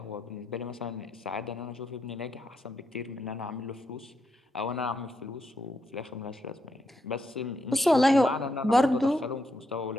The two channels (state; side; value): normal; both; correlation 0.81